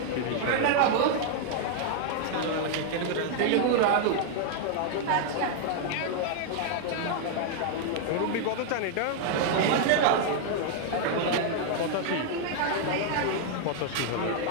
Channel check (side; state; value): both; different; correlation 0.00